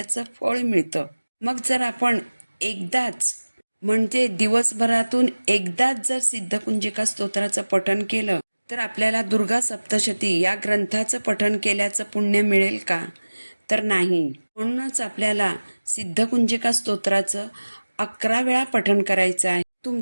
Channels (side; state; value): both; inverted; correlation -1.00